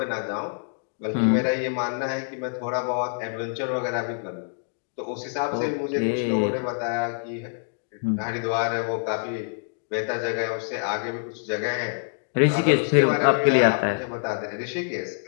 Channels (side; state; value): right; silent; 61 dB below the other